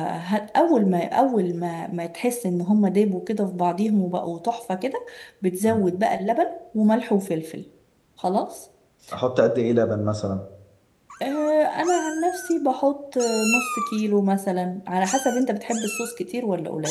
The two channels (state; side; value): identical; both; correlation 1.00